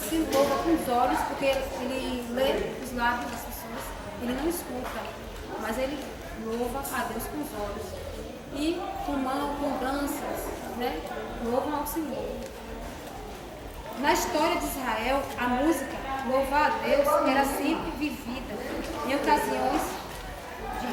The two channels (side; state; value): both; identical; correlation 1.00